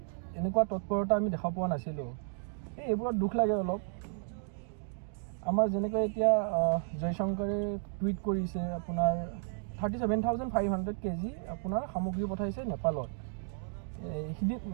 এনেকুৱা তৎপৰতা আমি দেখা পোৱা নাছিলোঁ। এইবোৰত দুখ লাগে অলপ। আমাৰ যেনেকৈ এতিয়া জয়শংকৰে টুইট কৰিছে, আপোনাৰ 37,500 কেজি আপোনাৰ সামগ্ৰী পঠাইছে নেপালত,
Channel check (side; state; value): left; silent; 55 dB below the other